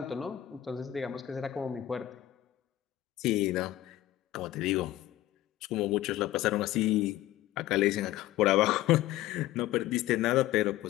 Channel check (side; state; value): right; quieter; 14.4 dB